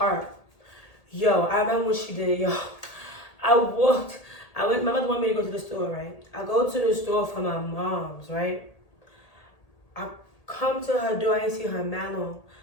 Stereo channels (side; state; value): right; late; 1.8 ms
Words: Yo, I remember what she did, yo. My mother wanted me to go to the store, right? I go to the store for my mom's, right? I come to her door, I didn't see her man long.